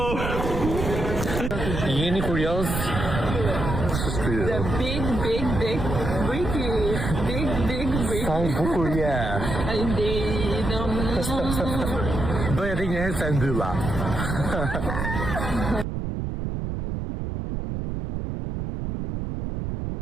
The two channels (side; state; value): right; noise; rumble, 3 dB below the sound